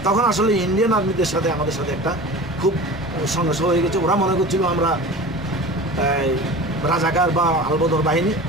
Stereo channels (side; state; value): both; normal; correlation 0.36